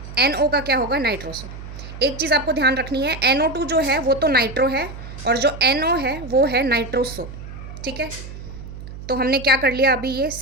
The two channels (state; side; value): noise; right; hum, 12 dB below the sound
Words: NO का क्या होगा, नाइट्रोसो। एक चीज़ आपको ध्यान रखनी है, NO2 जो है वो तो नाइट्रो है, और जो NO है वो है नाइट्रोसो, ठीक है। तो हमने क्या कर लिया, अभी ये